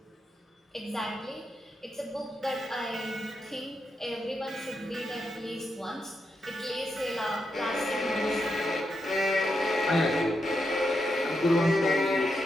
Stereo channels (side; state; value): both; normal; correlation 0.84